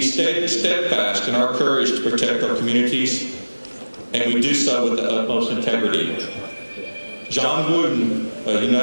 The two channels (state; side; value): inverted; both; correlation -1.00